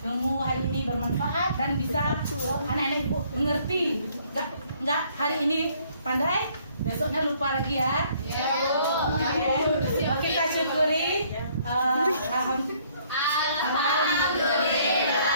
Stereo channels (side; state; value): both; inverted; correlation -0.63